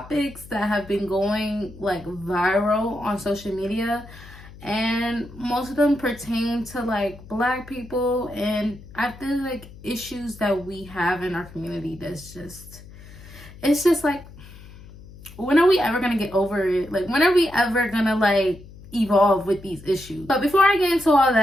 that have been going like viral on social media, and most of them pertain to like Black people, and I feel like issues that we have in our community it's just like, when are we ever gonna get over it? Like, when are we ever gonna like evolve with these issues? But before I get into all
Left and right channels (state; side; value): noise; left; hum, 19 dB below the sound